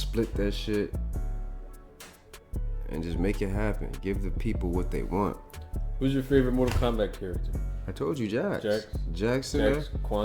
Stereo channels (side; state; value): both; identical; correlation 1.00